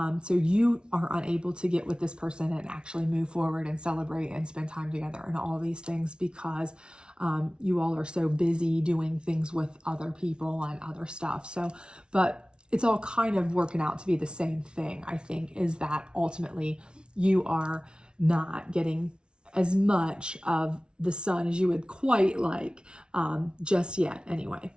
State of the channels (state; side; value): late; left; 0.056 ms